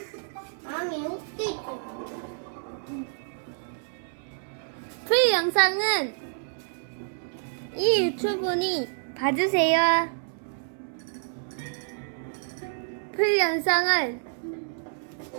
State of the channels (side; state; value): left; silent; 59 dB below the other